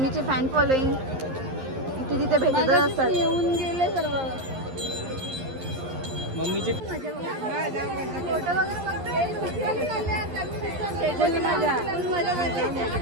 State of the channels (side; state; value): left; late; 11 ms